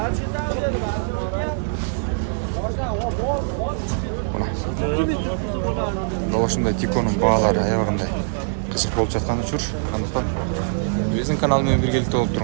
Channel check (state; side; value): silent; left; digital silence